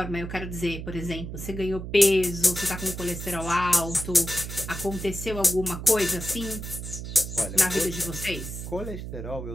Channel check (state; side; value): noise; right; hum, 8 dB below the sound